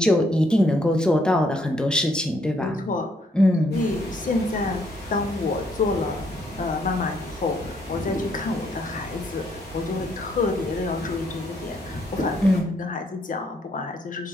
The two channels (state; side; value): normal; both; correlation 0.71